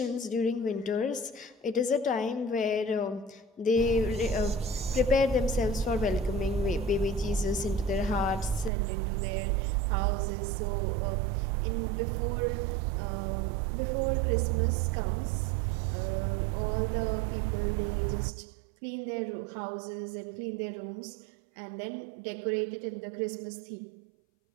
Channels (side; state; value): left; drops out; at 8.7 s